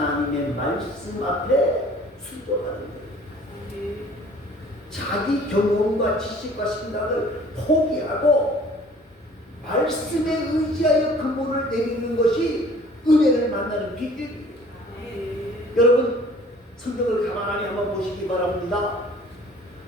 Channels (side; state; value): both; normal; correlation 0.51